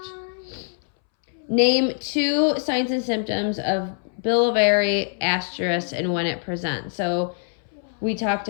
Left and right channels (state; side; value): silent; right; 63 dB below the other